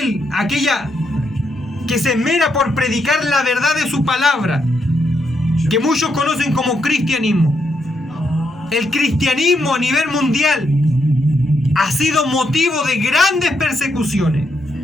que se esmera por predicar la verdad de su palabra, que muchos conocen como cristianismo. El cristianismo a nivel mundial ha sido motivo de grandes persecuciones.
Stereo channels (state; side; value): normal; both; correlation 0.80